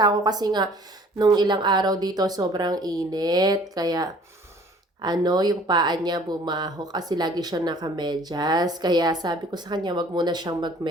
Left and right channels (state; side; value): normal; both; correlation 0.53